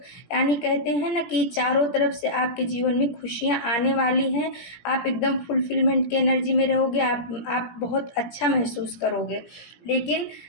यानी कहते हैं ना कि चारों तरफ से आपके जीवन में खुशियाँ आने वाली हैं। आप एकदम फुलफिलमेंट की एनर्जी में रहोगे। आप बहुत अच्छा महसूस करोगे। लेकिन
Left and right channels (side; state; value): right; late; 17 ms